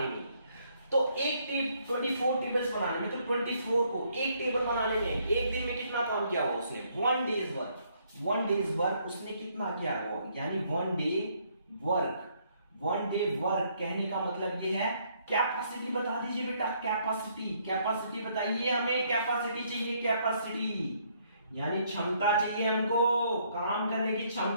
में, तो एक 24 टेबल्स बनाने में, तो 24 को एक टेबल बनाने में एक दिन में कितना काम किया हुआ उसने? 1 डेज वर्क। 1 डेज वर्क उसने कितना किया हुआ, यानी 1 डे वर्क। 1 डे वर्क कहने का मतलब ये है, कैपेसिटी बता दीजिए बेटा, कैपेसिटी, कैपेसिटी बताइए हमें, कैपेसिटी चाहिए, कैपेसिटी यानी क्षमता चाहिए हमको, काम करने की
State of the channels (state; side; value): inverted; both; correlation -0.69